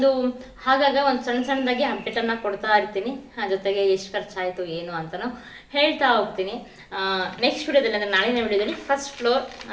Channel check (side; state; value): both; identical; correlation 1.00